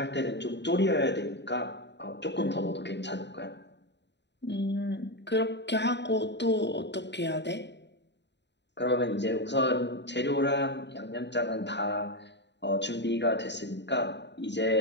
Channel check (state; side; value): late; right; 0.51 ms